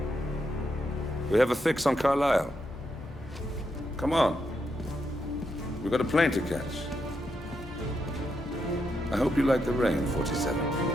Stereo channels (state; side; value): normal; both; correlation 0.82